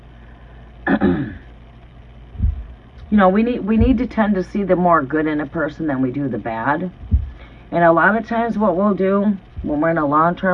You know, we need to tend to see the more good in a person than we do the bad. And a lot of times what we'll do when we're in a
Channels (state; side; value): identical; both; correlation 1.00